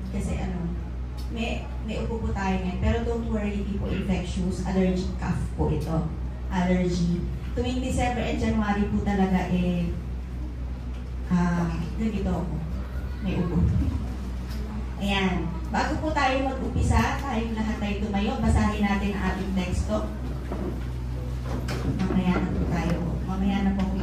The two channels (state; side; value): identical; both; correlation 1.00